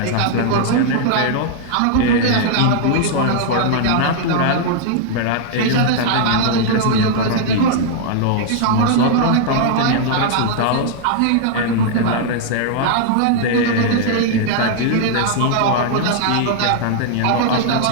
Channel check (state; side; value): different; both; correlation -0.01